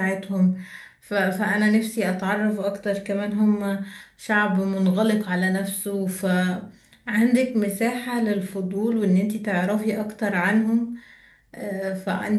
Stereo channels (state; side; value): identical; both; correlation 1.00